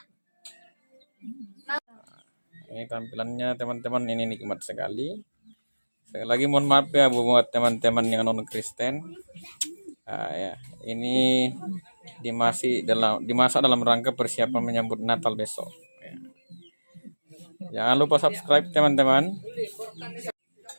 Ini tampilannya teman-teman, ini nikmat sekali. Sekali lagi mohon maaf ya buat teman-teman yang non Kristen. Nah, ya, ini dimasak dalam rangka persiapan menyambut Natal besok. Ya. Jangan lupa subscribe teman-teman.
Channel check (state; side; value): inverted; both; correlation -1.00